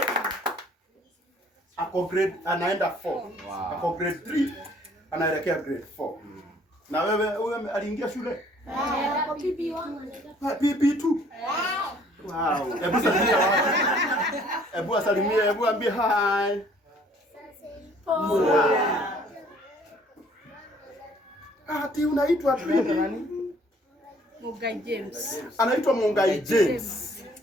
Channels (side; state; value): both; normal; correlation 0.58